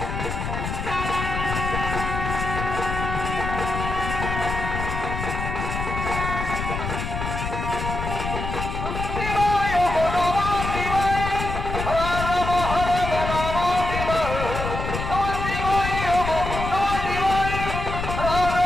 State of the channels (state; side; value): noise; left; rumble, 4 dB below the sound